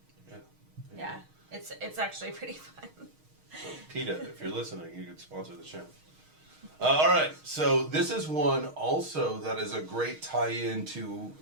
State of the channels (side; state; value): left; late; 6.4 ms